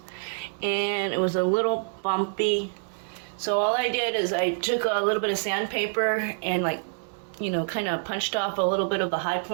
and it was a little bumpy. So all I did is I took a little bit of sandpaper and kind of punched off a little bit of the high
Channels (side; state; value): left; silent; 60 dB below the other